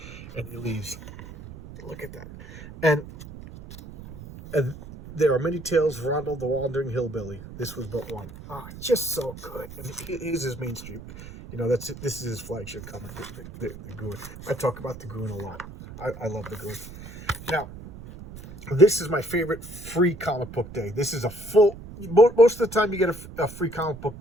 And he leaves. Look at that. And there are many tales of Rondo the Wandering Hillbilly. This was but one. Just so good. And here's his mainstream. This is his flagship comic, the Goon. I talk about the Goon a lot. I love the Goon. Now, this is my favorite free comic book day. This is a most of the time you get a free comic book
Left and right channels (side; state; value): right; noise; rumble, 14 dB below the sound